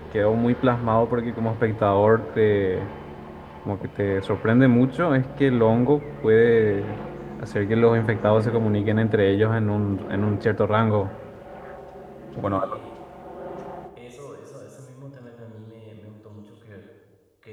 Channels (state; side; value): identical; both; correlation 1.00